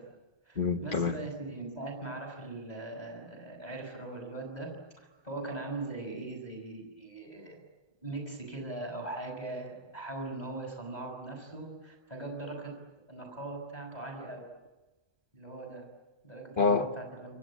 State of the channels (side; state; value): left; late; 1.2 ms